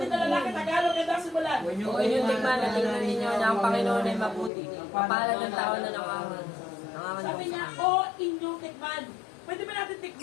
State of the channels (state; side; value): drops out; right; at 4.5 s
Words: na lalaki, Tagalog, ang dasi mo lang. O inyong tikman at tingnan ninyo na ang Panginoon ay mabuti. Kapalad ng tao na nangangan. Sabi niya, oh, inyong tikman. Pwede ba natin